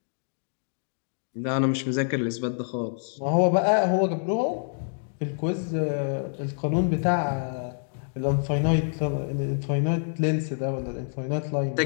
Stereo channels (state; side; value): silent; right; digital silence